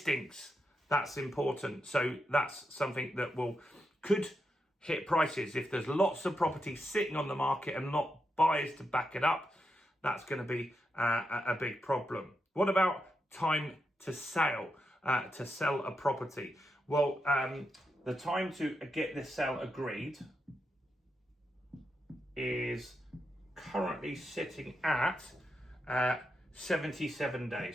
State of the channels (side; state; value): both; normal; correlation 0.85